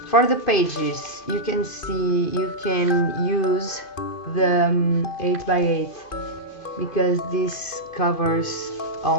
For the pages, you can see you can use the 8x8 because this covers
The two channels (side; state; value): right; late; 2.5 ms